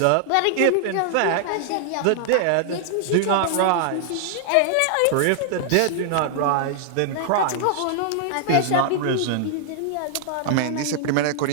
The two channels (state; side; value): different; both; correlation -0.01